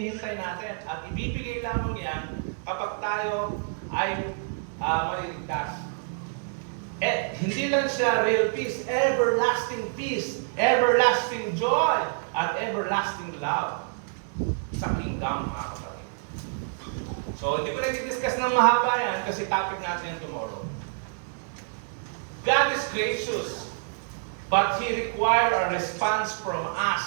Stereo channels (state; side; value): silent; left; digital silence